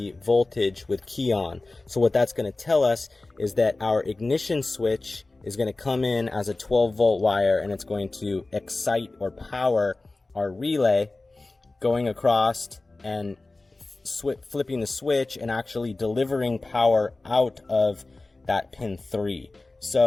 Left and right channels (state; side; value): quieter; right; 3.2 dB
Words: voltage with key on. So what that's going to tell us is that our ignition switch is going to come in as a 12-volt wire, and it's going to excite or power our relay, going across and flipping the switch and actually delivering power out of that pin 3.